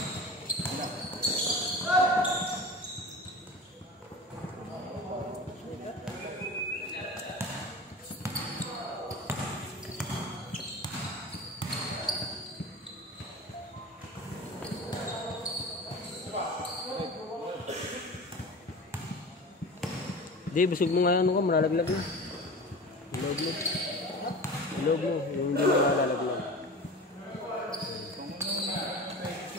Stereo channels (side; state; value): both; normal; correlation 0.34